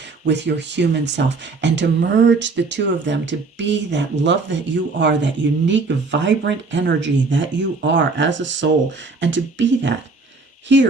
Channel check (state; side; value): quieter; left; 4.0 dB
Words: with your human self, and to merge the two of them, to be that love that you are, that unique, vibrant energy that you are as a soul, and to be that